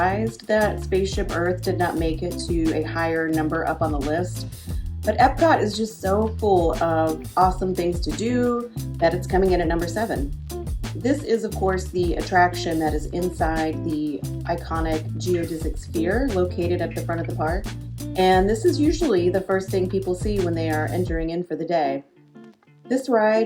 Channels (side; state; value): both; identical; correlation 1.00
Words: that Spaceship Earth did not make it to a higher number up on the list. But Epcot is just so full of awesome things to do that it's coming in at number 7. This is, of course, the attraction that is inside the iconic geodesic sphere located at the front of the park. And this is usually the first thing people see when they are entering in for the day. This ride